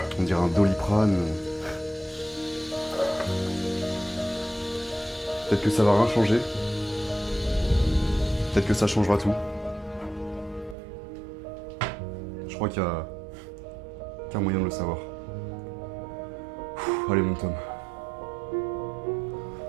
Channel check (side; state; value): left; drops out; at 10.8 s